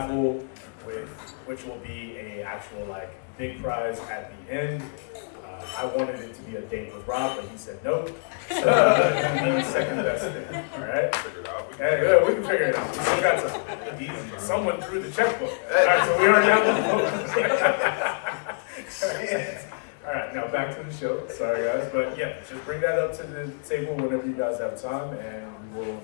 which will be a actual like big prize at the end. I wanted it to be a date with Rob, but he said no. So the second best thing. All right. Figure it out. Hey, we can figure it out. We still got time. Easy. Someone threw the checkbook. All right, so we already have the All right, now back to the show. Sorry, guys, but yeah, just bring that up to the table whenever you guys have time, and we will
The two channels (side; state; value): right; silent; digital silence